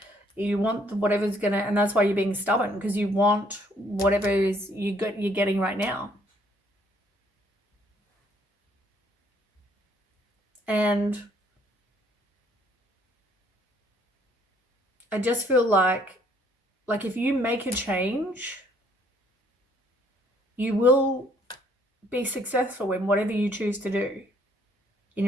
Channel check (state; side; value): normal; both; correlation 0.64